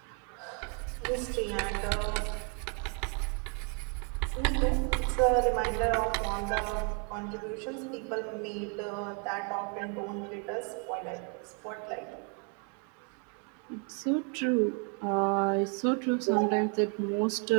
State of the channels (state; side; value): quieter; left; 36.4 dB